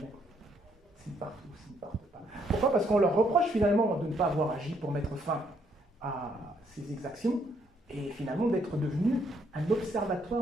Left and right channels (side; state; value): both; normal; correlation 0.71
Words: S'ils partent ou s'ils ne partent pas. Pourquoi? Parce qu'on leur reproche finalement de ne pas avoir agi pour mettre fin à ces exactions et finalement d'être devenu un